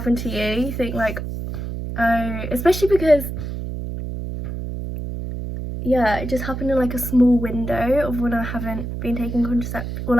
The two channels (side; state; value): right; noise; hum, 6 dB below the sound